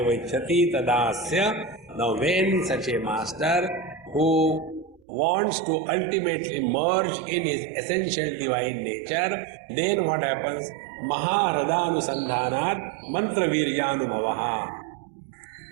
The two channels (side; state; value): left; drops out; at 5.0 s